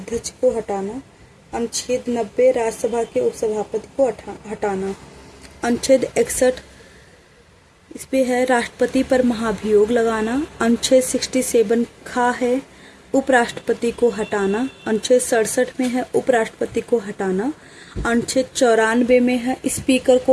को हटाना। अनुच्छेद 90 राज्यसभा के उपसभापति को हटाना। अनुच्छेद 61 इस पे है राष्ट्रपति पर महाभियोग लगाना। अनुच्छेद 67 खा है उपराष्ट्रपति को हटाना। अनुच्छेद 67 में है उपराष्ट्रपति को हटाना। अनुच्छेद 94 में है स्पीकर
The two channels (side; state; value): both; identical; correlation 1.00